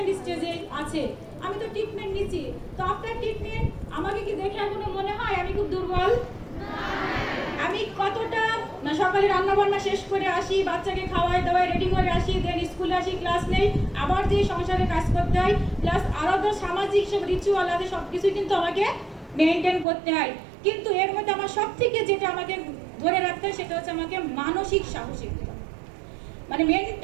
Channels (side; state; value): left; drops out; at 19.9 s